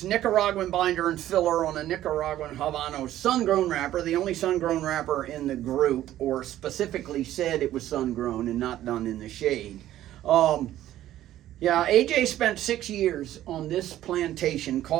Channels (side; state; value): left; quieter; 13.2 dB